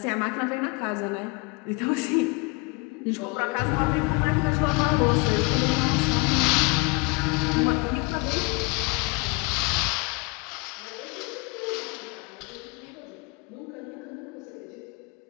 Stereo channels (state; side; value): quieter; right; 28.1 dB